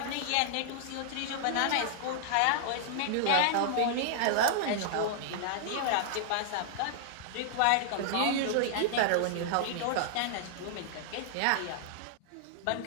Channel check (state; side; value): different; both; correlation -0.01